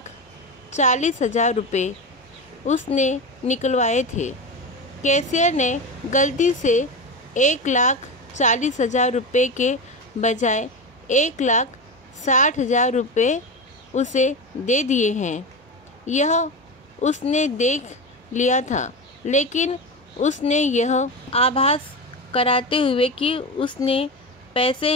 रुपये उसने निकलवाए थे। कैशियर ने गलती से 1,40,000 रुपये के बजाय 1,60,000 रुपये उसे दे दिए हैं। यह उसने देख लिया था, लेकिन उसने यह आभास कराते हुए कि उसने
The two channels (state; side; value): normal; both; correlation 0.21